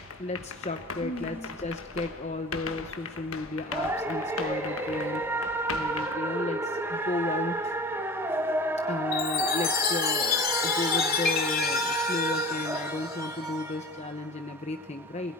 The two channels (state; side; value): normal; both; correlation 0.39